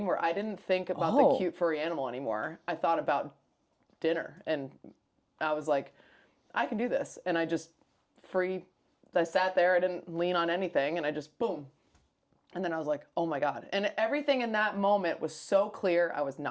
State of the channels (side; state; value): both; identical; correlation 1.00